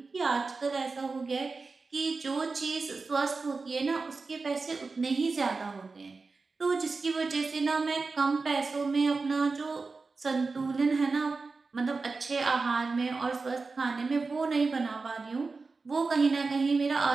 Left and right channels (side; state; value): left; quieter; 4.1 dB